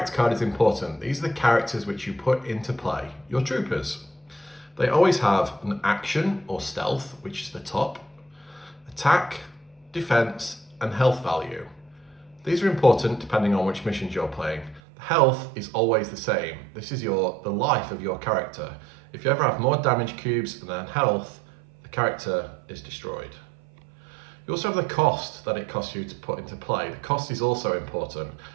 card is important. These are the characters which you put into play, your troopers. They always have an action or stealth, which is the top, attack, defense, and health value. These are important depending on which missions you're playing. The health is always the same. This is the life of your character. If you ever have more damage cubes than health, the character is destroyed. You also have the cost that it costs you to put into play. The cost is also important.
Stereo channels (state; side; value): drops out; left; at 14.8 s